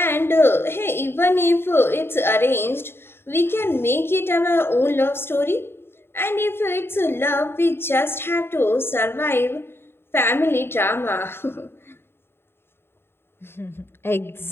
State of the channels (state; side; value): late; right; 0.11 ms